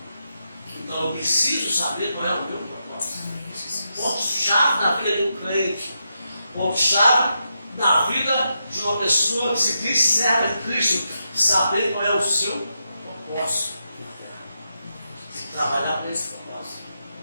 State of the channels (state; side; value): inverted; both; correlation -0.85